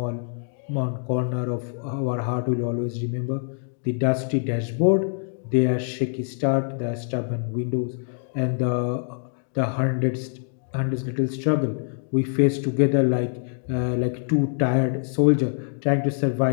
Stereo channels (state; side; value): silent; right; digital silence